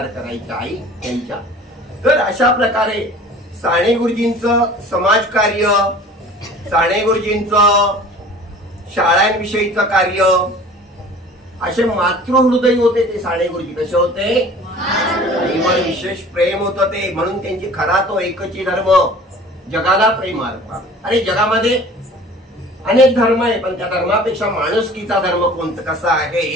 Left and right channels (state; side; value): normal; both; correlation 0.45